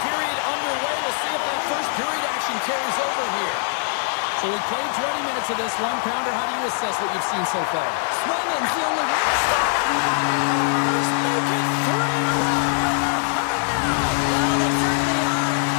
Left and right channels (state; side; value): silent; right; 59 dB below the other